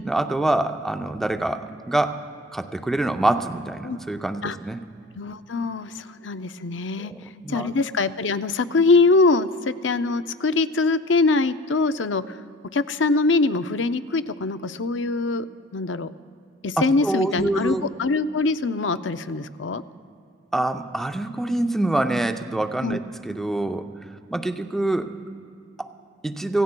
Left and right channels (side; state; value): both; normal; correlation 0.48